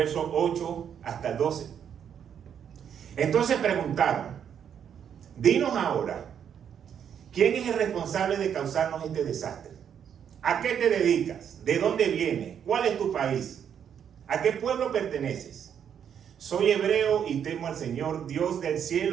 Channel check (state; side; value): quieter; left; 8.4 dB